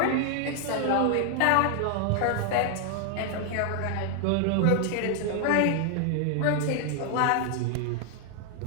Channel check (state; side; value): different; both; correlation 0.00